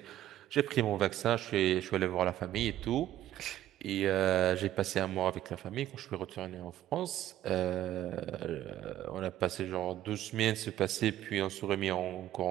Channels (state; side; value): quieter; left; 13.0 dB